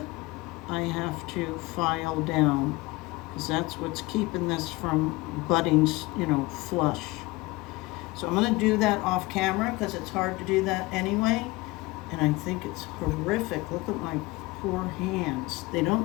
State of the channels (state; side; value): quieter; right; 21.9 dB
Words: I have to file down, because that's what's keeping this from butting, flush. So I'm going to do that off camera because it's hard to do that anyway. And I think it's horrific. Look at my poor hands. They